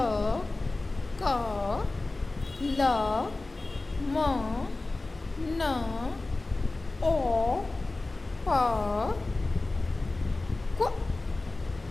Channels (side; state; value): right; quieter; 3.1 dB